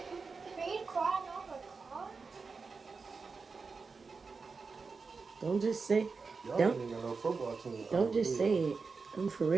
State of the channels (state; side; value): quieter; left; 4.7 dB